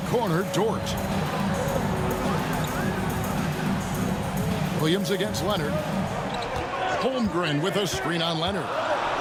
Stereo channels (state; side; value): identical; both; correlation 1.00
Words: corner, Dort. Williams against Leonard. Holmgren with a screen on Leonard.